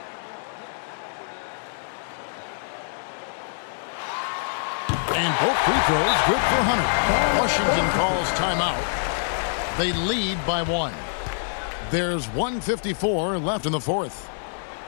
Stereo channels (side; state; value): right; silent; 62 dB below the other